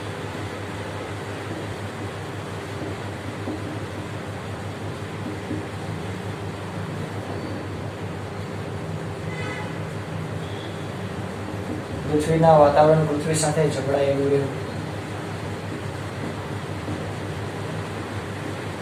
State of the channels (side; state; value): both; identical; correlation 1.00